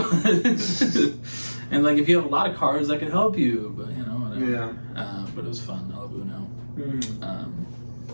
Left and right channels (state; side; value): inverted; both; correlation -1.00